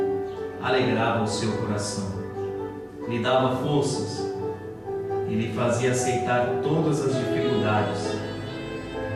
alegrava o seu coração, lhe dava forças e lhe fazia aceitar todas as dificuldades,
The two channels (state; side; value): identical; both; correlation 1.00